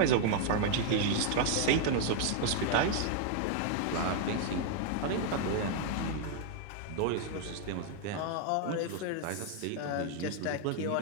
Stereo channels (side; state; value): both; different; correlation 0.00